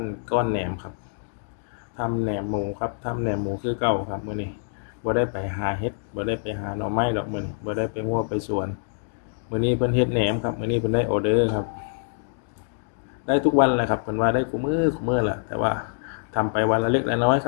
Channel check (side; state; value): right; silent; digital silence